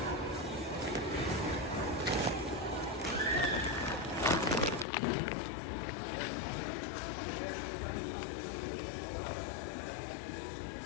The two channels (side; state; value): right; drops out; at 4.9 s